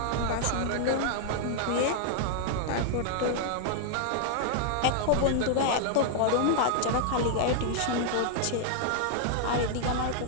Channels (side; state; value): both; different; correlation 0.00